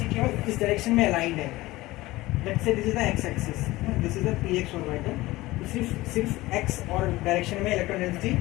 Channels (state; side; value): quieter; right; 18.8 dB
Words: केवल इस डायरेक्शन में अलाइंड है। Let's say this is the x axis, this is the px orbital. तो सिर्फ x और डायरेक्शन में इलेक्ट्रॉन डेंसिटी